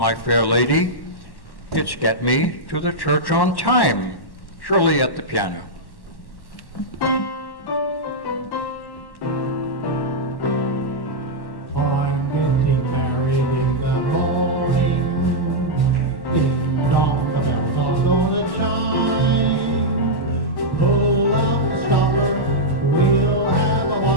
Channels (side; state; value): right; late; 1.1 ms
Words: Fair Lady. It's Get Me to the Church on Time, Shirley at the piano.